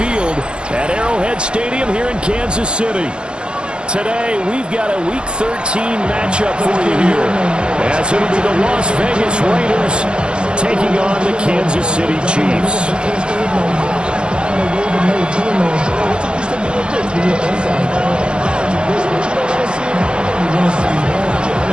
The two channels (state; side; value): late; left; 0.053 ms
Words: at Arrowhead Stadium here in Kansas City. Today, we've got a Week 13 matchup for you here, as it'll be the Las Vegas Raiders taking on the Kansas City Chiefs.